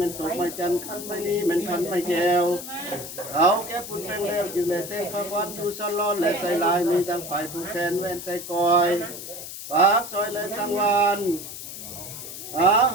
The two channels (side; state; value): left; noise; hiss, 10 dB below the sound